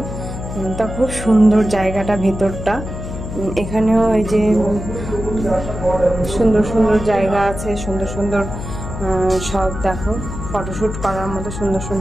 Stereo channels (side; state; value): left; noise; hum, 8 dB below the sound